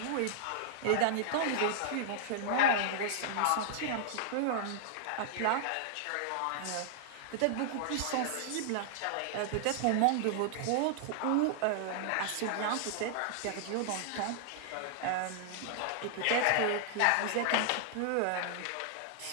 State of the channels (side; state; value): both; different; correlation -0.01